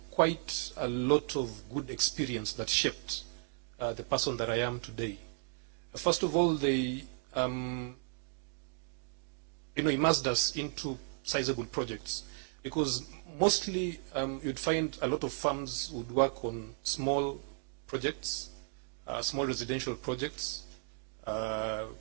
quite a lot of good experience that shaped the person that I am today. First of all, they immersed us into sizable projects, because mostly you'd find a lot of firms would work on small projects, small residential projects,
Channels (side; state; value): left; silent; 55 dB below the other